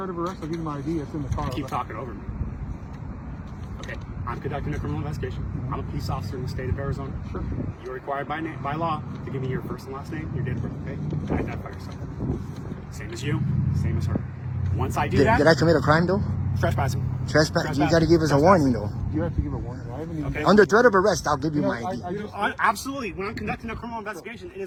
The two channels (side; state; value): both; identical; correlation 1.00